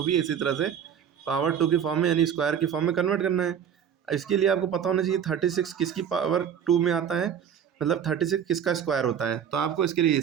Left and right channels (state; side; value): quieter; left; 8.4 dB